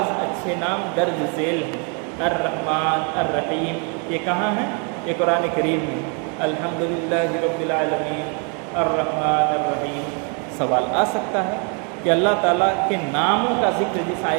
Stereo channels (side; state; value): left; quieter; 37.6 dB